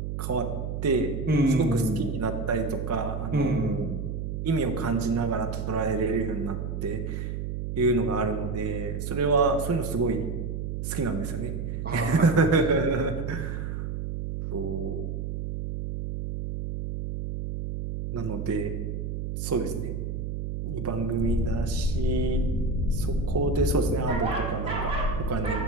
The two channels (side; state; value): right; noise; hum, 4 dB below the sound